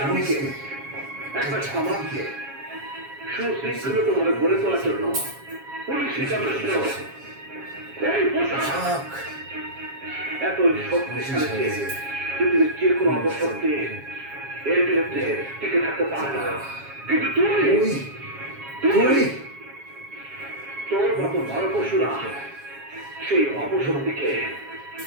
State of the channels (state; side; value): late; left; 7.3 ms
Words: একটা সমাজকে সুশৃঙ্খলভাবে গড়ে তোলার জন্য পুলিশই যথেষ্ট। এই পোশাক এত শক্তিশালী যে পৃথিবীর যে কোনো অপশক্তি এর বিরুদ্ধে টিকে থাকতে পারে না। কিন্তু তুই তোর মতো নরপশুরা সেই অপশক্তিকে